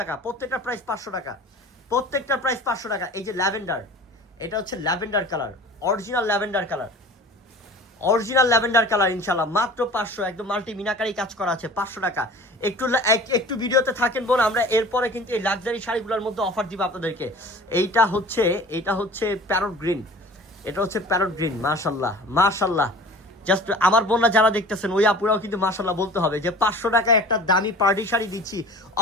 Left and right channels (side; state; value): both; normal; correlation 0.42